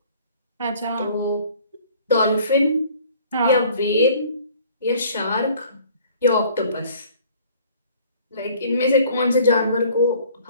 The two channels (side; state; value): both; inverted; correlation -0.54